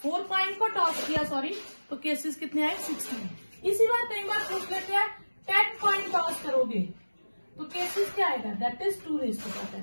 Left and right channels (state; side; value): inverted; both; correlation -1.00